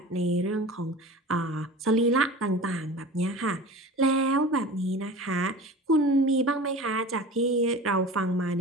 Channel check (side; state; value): both; normal; correlation 0.37